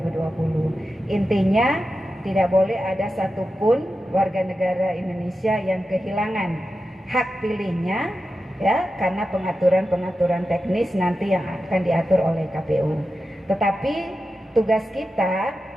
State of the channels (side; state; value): both; normal; correlation 0.91